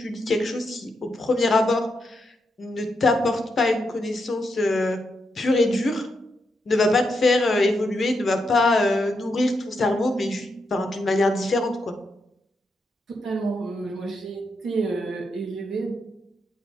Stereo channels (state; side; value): normal; both; correlation 0.83